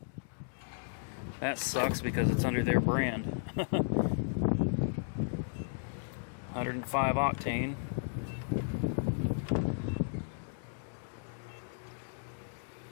That sucks because it's under their brand. 105 octane.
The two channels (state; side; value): silent; right; digital silence